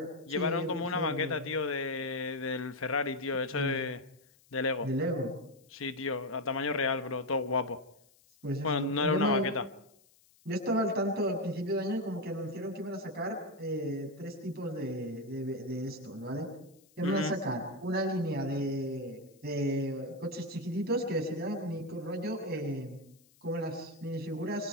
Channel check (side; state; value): left; noise; hiss, 30 dB below the sound